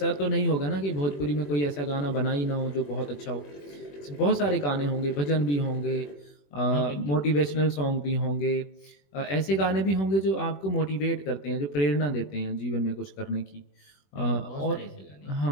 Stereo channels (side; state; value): right; late; 21 ms